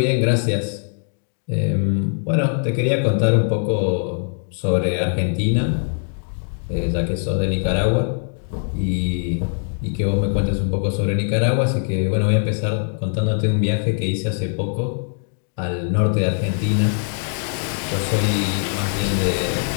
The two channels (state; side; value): silent; right; 59 dB below the other